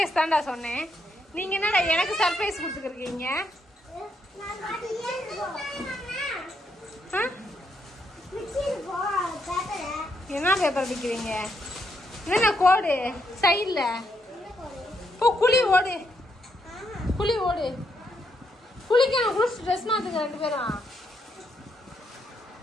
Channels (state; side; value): normal; both; correlation 0.77